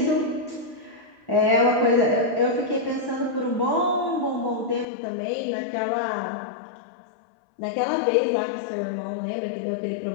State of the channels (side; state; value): right; drops out; at 4.9 s